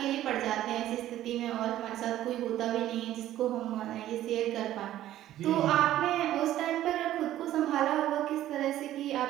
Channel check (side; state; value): left; quieter; 13.3 dB